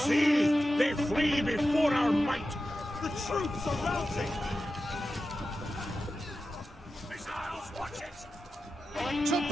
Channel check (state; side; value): normal; both; correlation 0.92